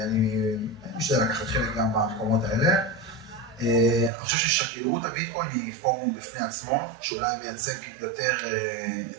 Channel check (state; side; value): drops out; left; at 4.1 s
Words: אני משתדל לקחת חלק גם במקומות האלה. אני חושב ששגרירות הביטקוין היא פורום בפני עצמו, שאולי מייצג יותר,